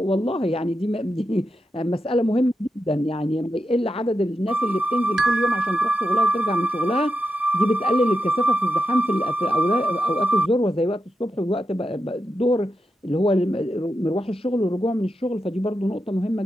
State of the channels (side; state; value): both; normal; correlation 0.87